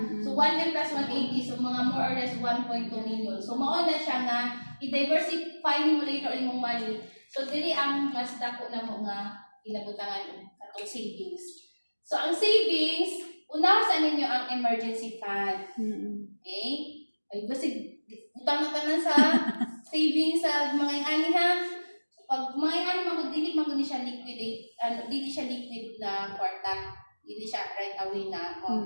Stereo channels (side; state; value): both; inverted; correlation -1.00